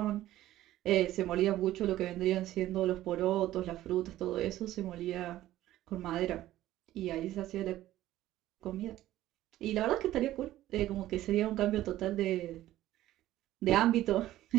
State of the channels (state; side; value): quieter; left; 14.4 dB